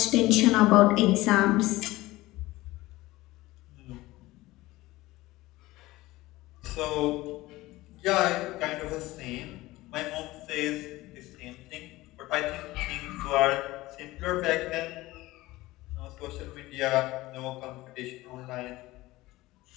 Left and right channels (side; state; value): right; quieter; 18.6 dB